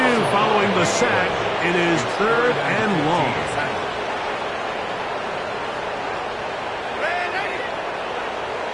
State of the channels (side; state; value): both; identical; correlation 1.00